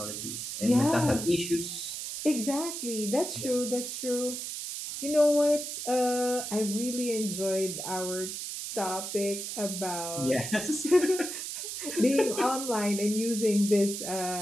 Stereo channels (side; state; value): right; noise; hiss, 6 dB below the sound